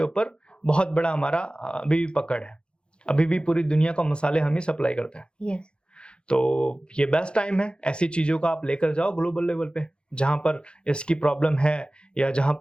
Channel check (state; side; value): late; right; 0.053 ms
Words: ऊपर बहुत बड़ा हमारा अभी भी पकड़ है, अभी भी पूरी दुनिया को मसाले हम ही सप्लाई करते हैं। yes. तो ये बेस्ट टाइम है, ऐसी चीजों को आप लेकर जाओ ग्लोबल लेवल पे, जहां पर इसकी प्रॉब्लम है या जहां